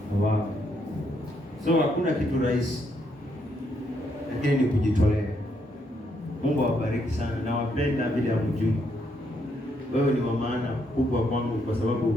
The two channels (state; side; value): normal; both; correlation 0.75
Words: Wow. So hakuna kitu rahisi, lakini ni kujitolea. Mungu awabariki sana, na wapenda bila mjui. Wewe ni wa maana kubwa kwangu, kwa